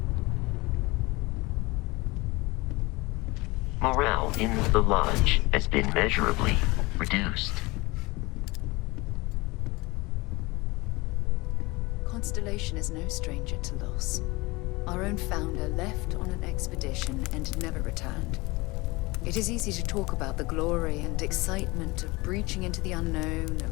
Morale in the lodge has been measurably reduced. Constellation is no stranger to loss. Our own founder left on an expedition and never returned. It is easy to talk about the glory and excitement of breaching into the unknown,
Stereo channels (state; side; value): quieter; right; 23.2 dB